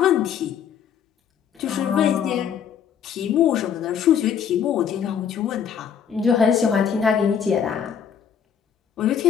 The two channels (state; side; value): quieter; right; 7.9 dB